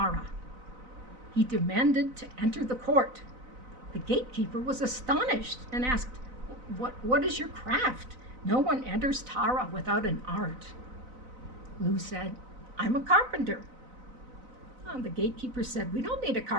He demanded to enter the court. The gatekeeper was astonished and asked, what is your craft? No one enters Tara without an art. Lugh said, I'm a carpenter. The gatekeeper said, we don't need a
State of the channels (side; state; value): left; late; 4.0 ms